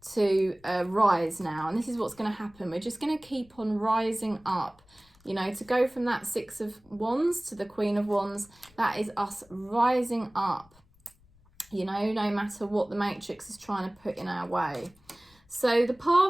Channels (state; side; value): noise; left; rumble, 30 dB below the sound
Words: to rise now. And this is what's going to happen. We're just going to keep on rising up. You know, to go from that 6 of Wands to the Queen of Wands, that is us rising up, you know, no matter what the matrix is trying to put in our way. So the